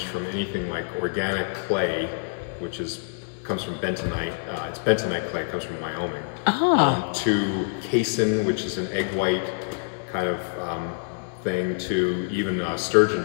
from anything like organic clay, which comes from bentonite. It's bentonite clay, it comes from Wyoming, to casein, which is an egg white kind of thing, to even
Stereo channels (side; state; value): right; silent; digital silence